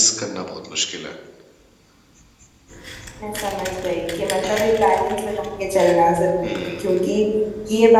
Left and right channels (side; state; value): both; identical; correlation 1.00